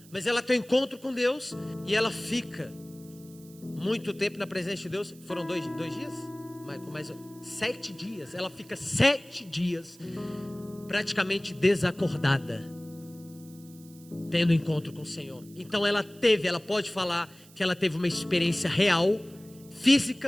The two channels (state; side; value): noise; right; hiss, 24 dB below the sound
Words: mas ela tem um encontro com Deus, e ela fica muito tempo na presença de Deus. Foram dois dias? Michael, mais 7 dias, ela fica 7 dias, praticamente desacordada, tendo encontro com o Senhor. Então ela pode falar que ela teve uma experiência real,